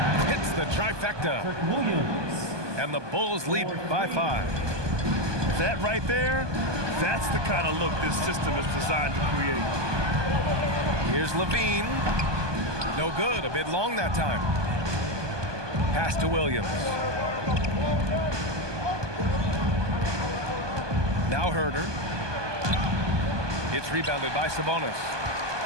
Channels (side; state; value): left; late; 1.2 ms